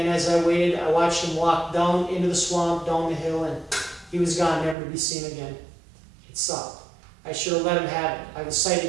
as I waited, I watched him walk down into the swamp, down the hill, and he was gone, never to be seen again. It sucked. I should have let him have it. I was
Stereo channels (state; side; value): drops out; left; at 4.8 s